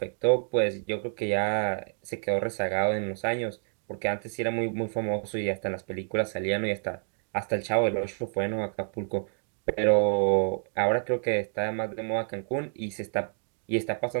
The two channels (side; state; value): left; silent; digital silence